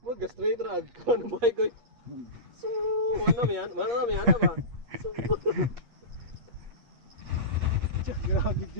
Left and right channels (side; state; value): left; late; 8.4 ms